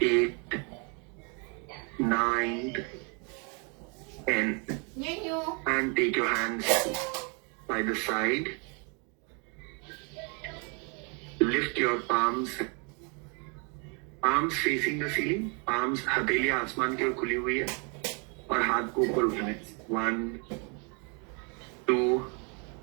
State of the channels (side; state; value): left; quieter; 35.4 dB